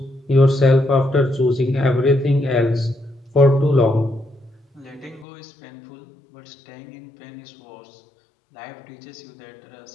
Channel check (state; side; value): drops out; right; at 5.2 s